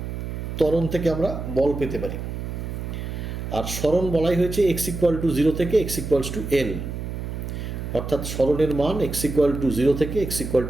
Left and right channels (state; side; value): noise; right; hum, 6 dB below the sound